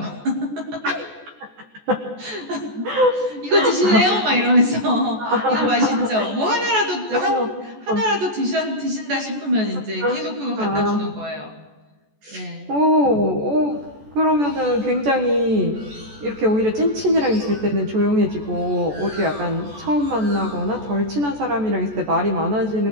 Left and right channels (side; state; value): left; late; 14 ms